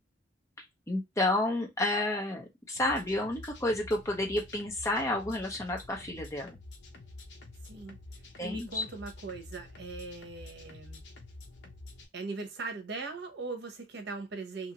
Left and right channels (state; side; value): normal; both; correlation 0.48